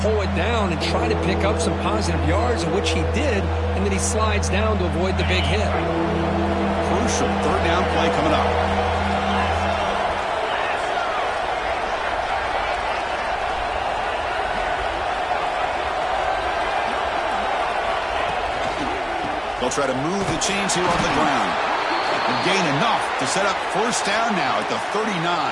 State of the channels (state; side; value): identical; both; correlation 1.00